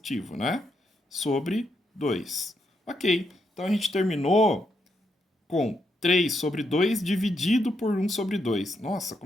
né? Sobre 2. Ok, então a gente terminou com 3 sobre 2 dividido por 1 sobre 2. Nossa,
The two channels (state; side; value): normal; both; correlation 0.80